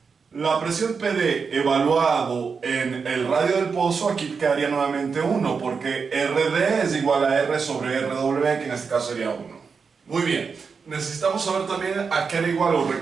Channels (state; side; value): quieter; left; 5.4 dB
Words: la presión PD evaluado en el radio del pozo, aquí quedaría nuevamente 1, porque RD es igual a R sobre RW, que en este caso sería 1. Muy bien, necesitamos saber también a qué era igual, o